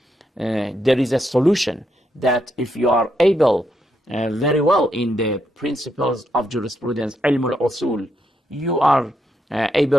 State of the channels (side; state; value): both; normal; correlation 0.80